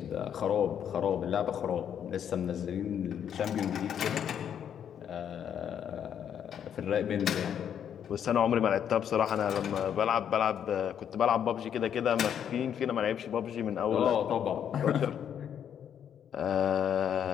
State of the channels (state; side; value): quieter; right; 8.9 dB